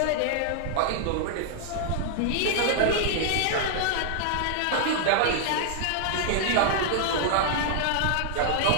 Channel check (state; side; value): different; both; correlation -0.01